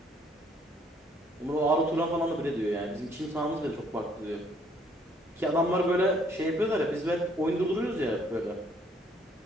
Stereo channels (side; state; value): both; normal; correlation 0.64